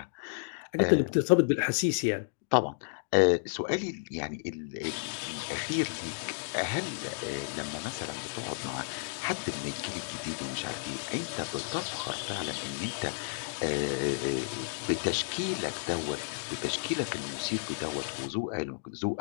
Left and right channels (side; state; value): right; silent; digital silence